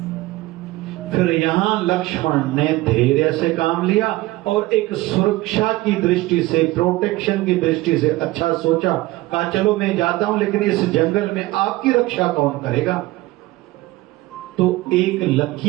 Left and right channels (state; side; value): quieter; left; 18.9 dB